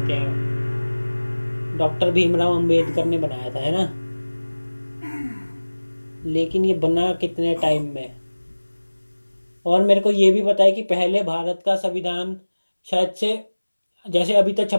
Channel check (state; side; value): inverted; both; correlation -1.00